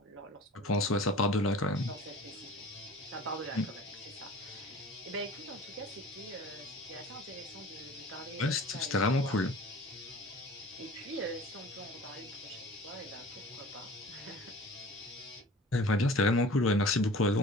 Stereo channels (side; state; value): both; normal; correlation 0.43